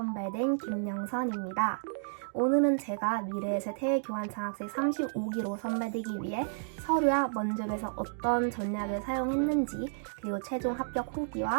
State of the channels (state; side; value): silent; left; digital silence